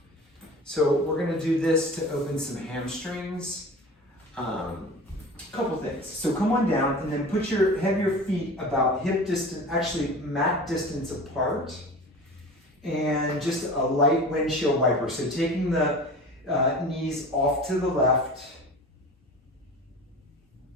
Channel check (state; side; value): normal; both; correlation 0.37